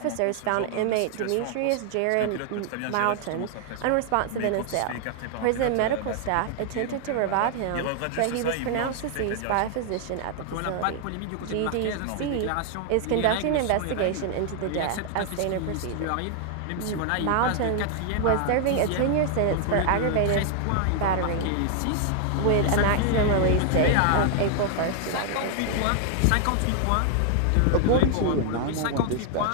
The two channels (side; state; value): both; different; correlation 0.00